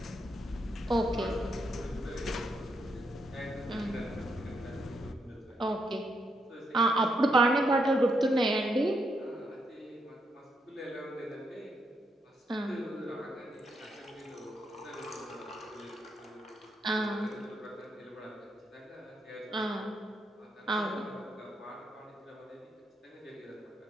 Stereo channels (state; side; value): normal; both; correlation 0.79